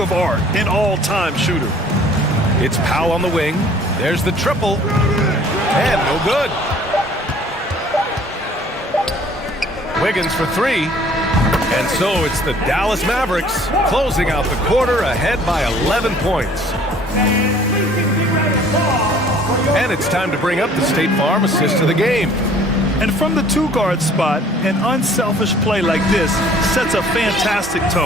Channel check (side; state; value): both; normal; correlation 0.54